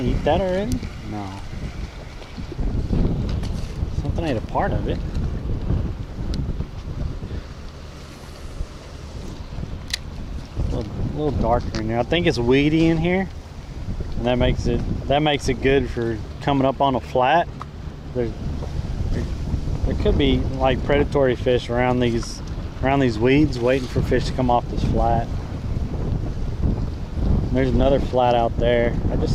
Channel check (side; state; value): both; identical; correlation 1.00